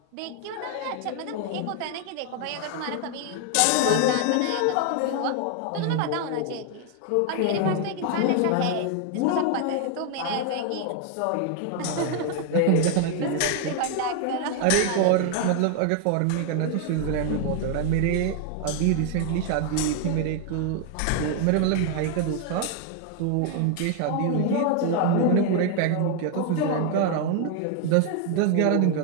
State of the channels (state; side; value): different; both; correlation 0.01